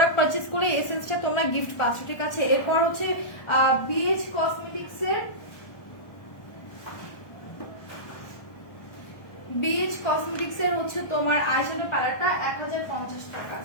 পারচেজ করলে এসেন্সটা তোমরা গিফট পাচ্ছ, ঠিক আছে। এরপর হচ্ছে বিএইচ কসমেটিক্সের হচ্ছে তোমার আইশ্যাডো প্যালেটটা 1050 টাকা।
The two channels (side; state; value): right; late; 1.2 ms